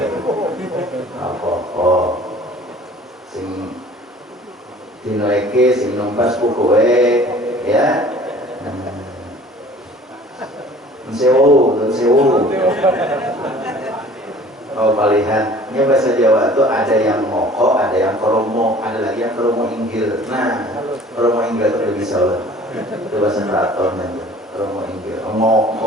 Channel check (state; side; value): normal; both; correlation 0.49